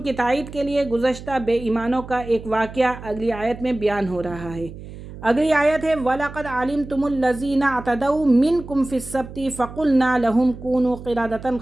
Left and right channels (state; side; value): noise; right; hum, 14 dB below the sound